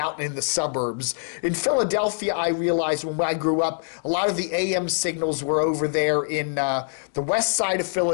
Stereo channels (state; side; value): silent; right; digital silence